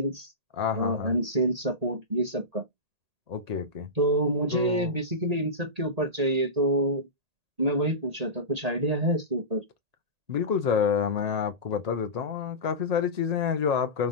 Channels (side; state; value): left; late; 1.8 ms